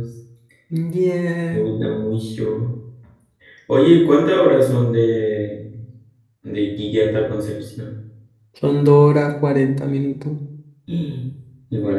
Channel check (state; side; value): identical; both; correlation 1.00